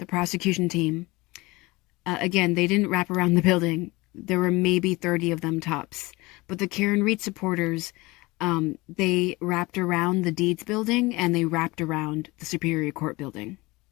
prosecution team, again, they didn't wrap around the building. There were maybe 30 of them tops. But the Karen Read supporters, they wrapped around the Deeds building and they wrapped around the Superior Court building.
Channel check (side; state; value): right; quieter; 22.4 dB